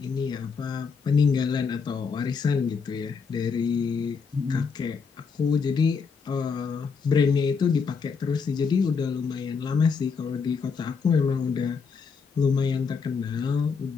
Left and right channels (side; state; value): right; quieter; 5.5 dB